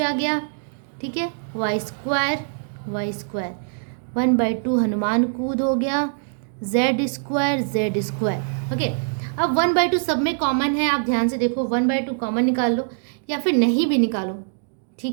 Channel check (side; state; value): left; silent; digital silence